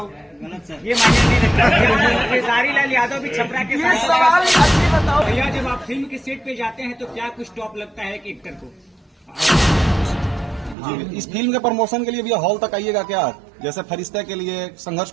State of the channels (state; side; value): drops out; left; at 10.8 s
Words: ये मायने नहीं रखता। खेसारी लाल यादव भी छपरा के ये सवाल अच्छी बताओ भैया, जब आप फिल्म के सेट पे जाते हैं तो क्या कुछ टॉप लगता है कि एक्टर को? जी, इस फिल्म के प्रमोशन के लिए भी हॉल तक आइएगा क्या? जैसे फरिश्ता के लिए, संघर्ष